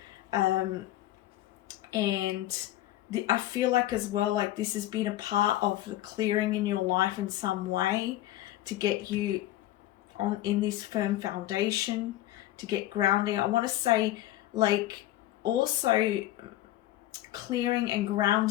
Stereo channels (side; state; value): right; quieter; 14.6 dB